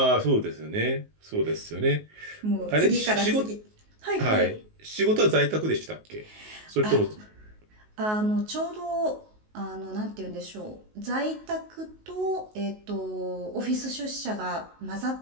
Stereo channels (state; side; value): late; left; 19 ms